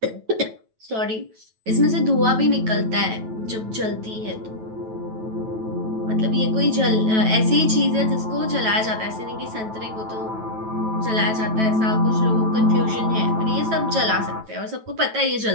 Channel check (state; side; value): late; left; 9.1 ms